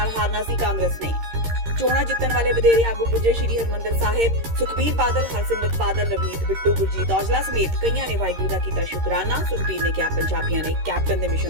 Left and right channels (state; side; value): late; left; 13 ms